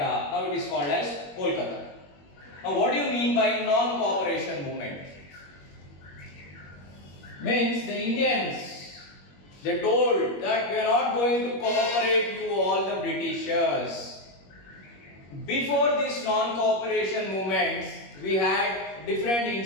Now it is called as Kolkata. Now what do you mean by non-cooperation movement? Means the Indians, they told that we are not going to cooperate you all the Britishers. Before this non-cooperation movements, we had different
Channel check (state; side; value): late; right; 21 ms